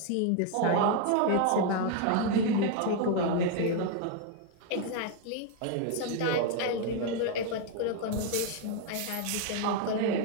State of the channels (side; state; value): both; different; correlation 0.01